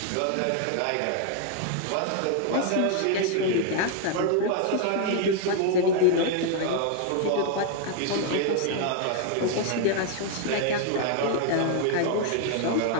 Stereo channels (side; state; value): both; different; correlation 0.00